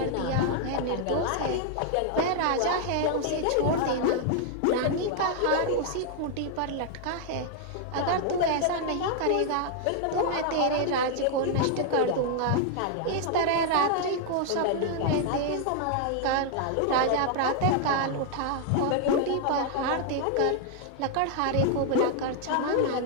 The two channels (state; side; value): different; both; correlation 0.00